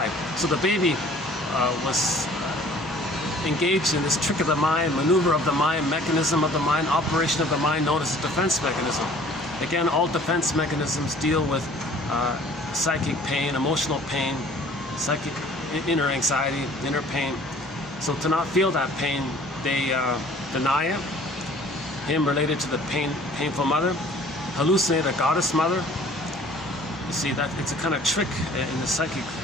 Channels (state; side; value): normal; both; correlation 0.52